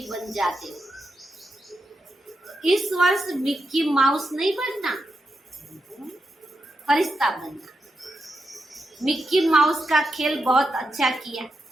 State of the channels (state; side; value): normal; both; correlation 0.85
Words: बन जाते हो। इस वर्ष मिक्की माउस नहीं बनना, फरिश्ता बनना। मिक्की माउस का खेल बहुत अच्छा किया,